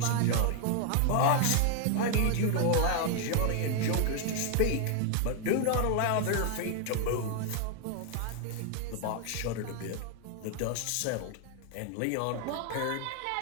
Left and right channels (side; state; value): both; different; correlation 0.00